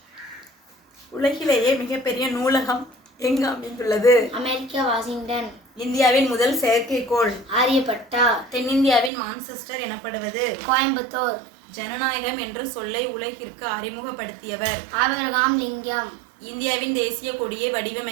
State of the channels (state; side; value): drops out; left; at 9.1 s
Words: உலகிலேயே மிகப்பெரிய நூலகம் எங்கு அமைந்துள்ளது? America, Washington. இந்தியாவின் முதல் செயற்கைக்கோள்? ஆரியப்பட்டா. தென்னிந்தியாவின் மான்செஸ்டர் எனப்படுவது? கோயம்புத்தூர். ஜனநாயகம் என்ற சொல்லை உலகிற்கு அறிமுகப்படுத்தியவர்? ஆபிரகாம் லிங்கம். இந்தியாவின் தேசிய கொடியை